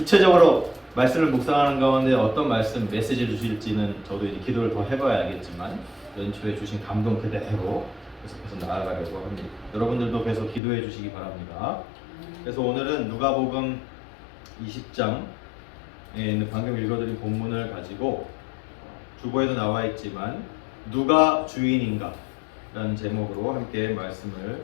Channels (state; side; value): drops out; right; at 10.6 s